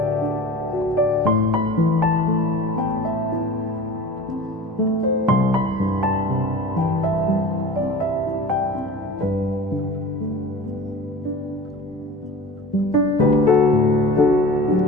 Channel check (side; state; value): both; normal; correlation 0.37